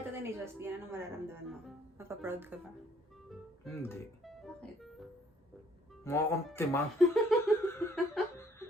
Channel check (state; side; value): normal; both; correlation 0.62